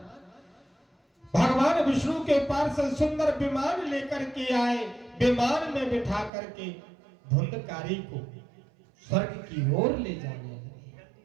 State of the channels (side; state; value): left; drops out; at 6.3 s